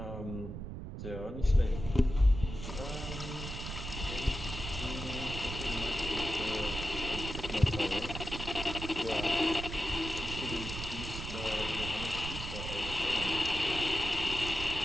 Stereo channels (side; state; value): right; noise; rumble, 7 dB below the sound